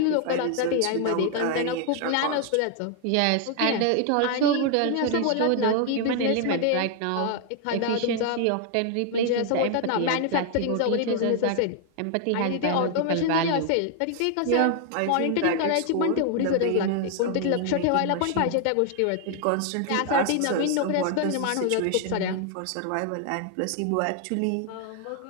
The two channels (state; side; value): different; both; correlation 0.00